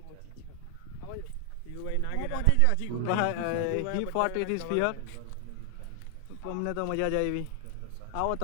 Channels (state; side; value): different; both; correlation 0.00